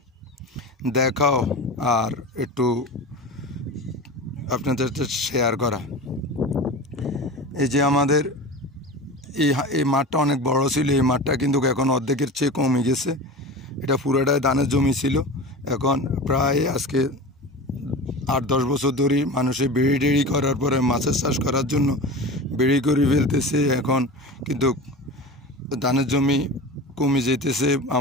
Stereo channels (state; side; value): normal; both; correlation 0.31